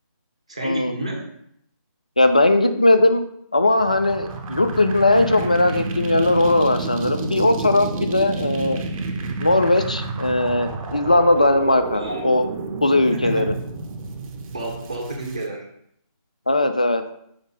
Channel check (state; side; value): inverted; both; correlation -0.83